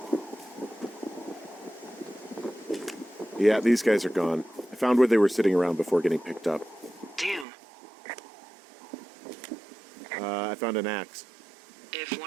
Yeah, these guys are gone. I found where they were sitting around before getting picked up. Damn. I found an axe. If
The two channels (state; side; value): drops out; left; at 7.5 s